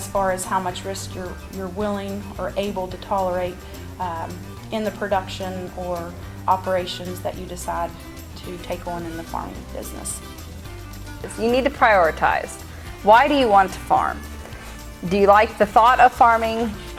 far as how much risk you're willing or able to tolerate in the production or operations that you decide to take on in the farming business. You need to prioritize. Why do you want to farm? Do you like the thought of farming?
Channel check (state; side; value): identical; both; correlation 1.00